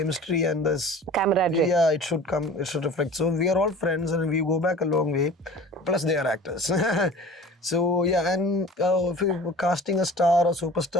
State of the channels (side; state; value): both; normal; correlation 0.42